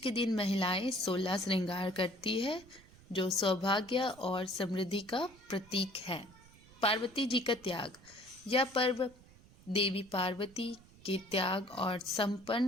दिन महिलाएं 16 श्रृंगार करती है, जो सौभाग्य और समृद्धि का प्रतीक है। पार्वती जी का त्याग। यह पर्व देवी पार्वती के त्याग और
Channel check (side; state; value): right; noise; rumble, 24 dB below the sound